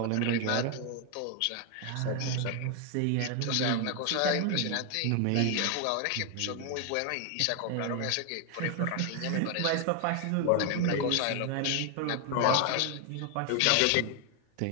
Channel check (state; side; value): different; both; correlation 0.01